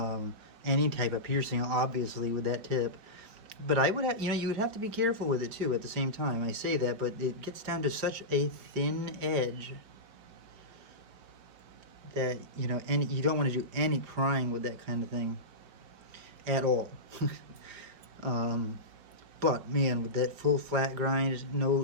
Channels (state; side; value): late; left; 4.8 ms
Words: type of piercing, obviously with that tip. But I would have, you would have to be careful with it too. At the same time, I say that, but it gets down to such a thin edge that, and you don't want to do any prying with that kind of thing at all. But man, with that full flat grind,